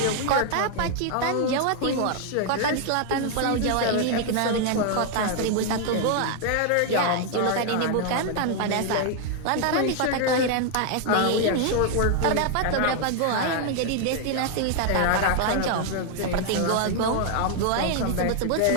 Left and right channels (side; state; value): both; different; correlation 0.00